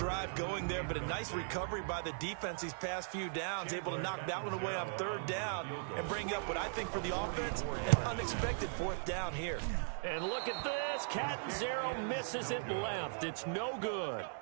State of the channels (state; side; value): silent; left; digital silence